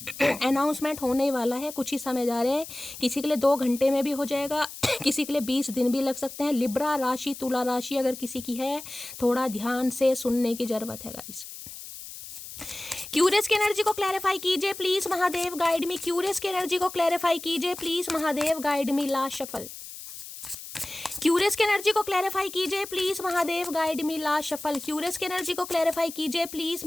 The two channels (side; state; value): left; noise; hiss, 12 dB below the sound